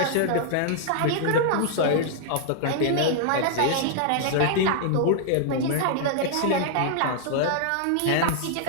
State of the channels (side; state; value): both; different; correlation -0.01